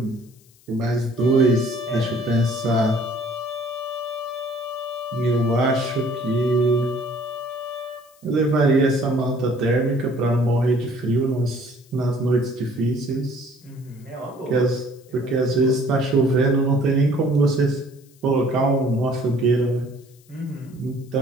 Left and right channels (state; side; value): noise; left; hiss, 29 dB below the sound